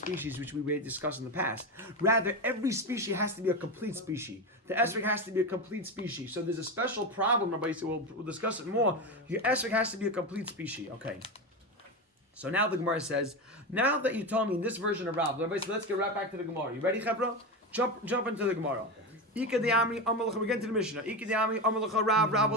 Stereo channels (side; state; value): both; normal; correlation 0.18